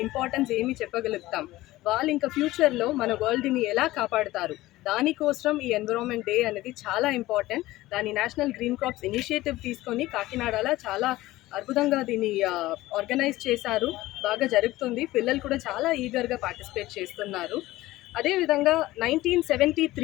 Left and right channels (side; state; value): right; quieter; 17.4 dB